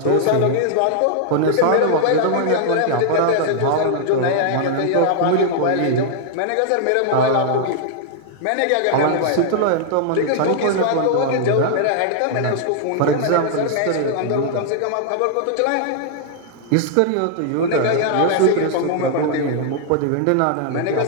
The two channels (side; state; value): both; different; correlation -0.01